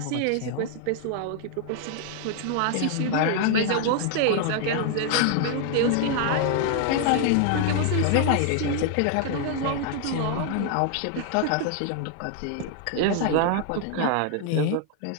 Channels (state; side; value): different; both; correlation 0.00